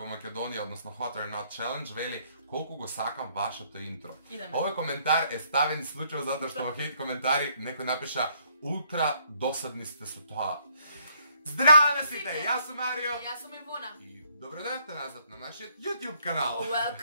во Македонија, односно Hot or Not Challenge, вели: колку го сакам вашето интро. Овој коментар е ставен случајно затоа што во хейт коментари некој напиша: ултра досадни сте со тоа. Здраво на сите, јас сум Марио. Јас сум Ивона. И Добредојавте назад на нашиот YouTube канал.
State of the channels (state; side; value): inverted; both; correlation -0.67